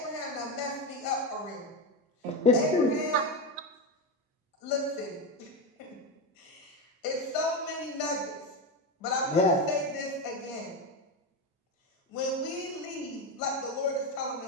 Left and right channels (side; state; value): both; normal; correlation 0.14